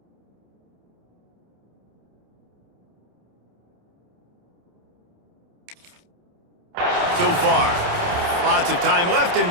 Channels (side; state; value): left; late; 28 ms